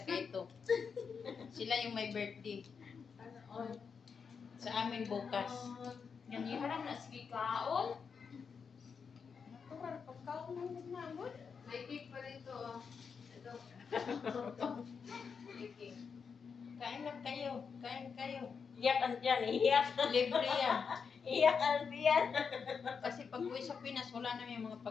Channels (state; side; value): quieter; right; 6.0 dB